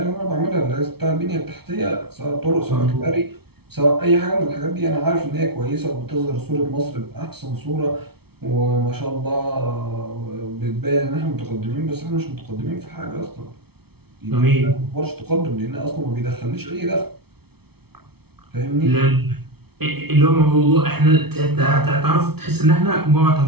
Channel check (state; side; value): late; left; 0.96 ms